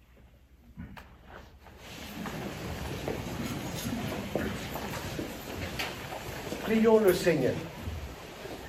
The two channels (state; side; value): identical; both; correlation 1.00